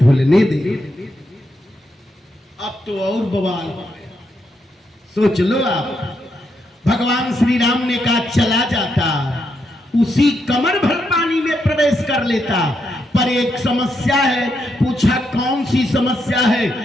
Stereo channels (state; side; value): normal; both; correlation 0.81